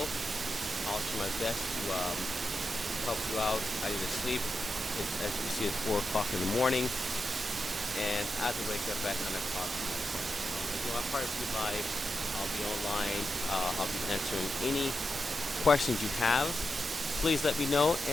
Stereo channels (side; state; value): both; normal; correlation 0.88